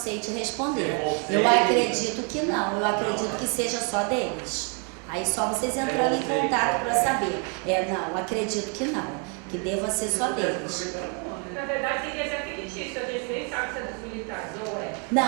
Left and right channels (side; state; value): left; quieter; 37.6 dB